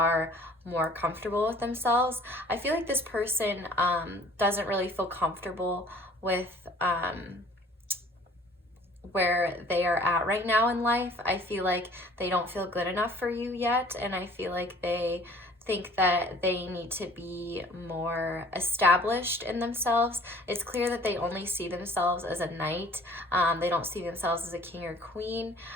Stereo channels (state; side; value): normal; both; correlation 0.51